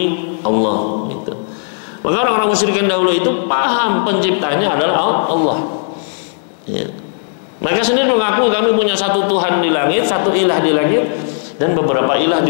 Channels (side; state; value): right; silent; digital silence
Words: Allah, gitu. Maka orang-orang musyrikin dahulu itu paham penciptanya adalah Allah, ya. Mereka sendiri mengaku kami punya satu Tuhan di langit, satu ilah di langit, dan beberapa ilah